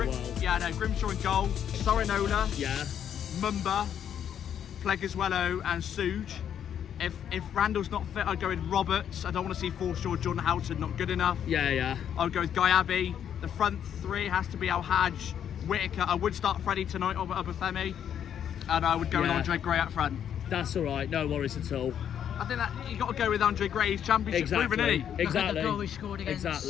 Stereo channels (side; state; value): right; quieter; 9.2 dB